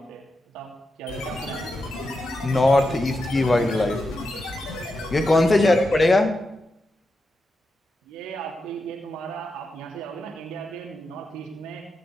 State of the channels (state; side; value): normal; both; correlation 0.87